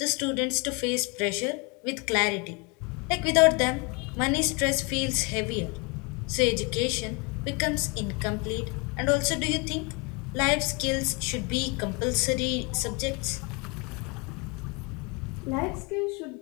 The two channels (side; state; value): right; quieter; 30.7 dB